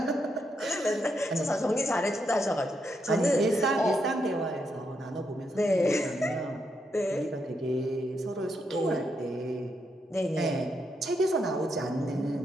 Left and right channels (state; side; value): normal; both; correlation 0.80